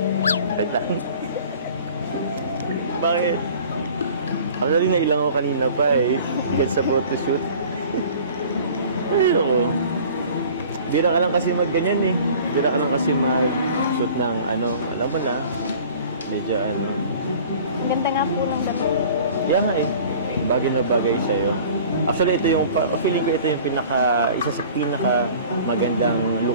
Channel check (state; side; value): inverted; both; correlation -0.46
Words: Bakit? Actually, nailang ako kanina pa kahit sa photoshoot. Ay, ako. Bira ka lang kasi mag-ganyan Bira ka lang kasi mag-shoot ng alam mo na. Medyo Ganda nga po ng dati. Kaya nga bagay na bagay sa'yo. Actually, feeling ko ito yung isa sa pinaka magandang